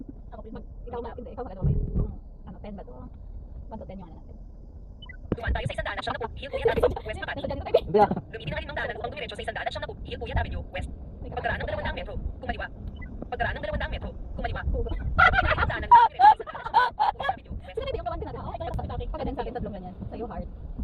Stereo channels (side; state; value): both; identical; correlation 1.00